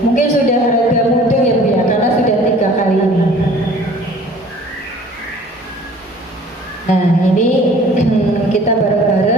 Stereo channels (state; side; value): normal; both; correlation 0.50